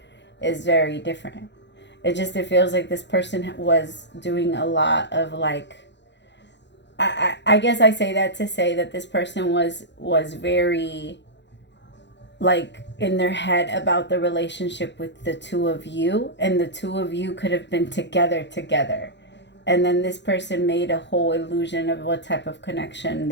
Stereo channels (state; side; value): late; right; 0.52 ms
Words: is very different. It feels like this person was doing a lot of like, I guess I say that to say that this person was very like in their head about the relationship with the two of you, and the two of you could have been together. And then this person made a whole illusion of what type of connection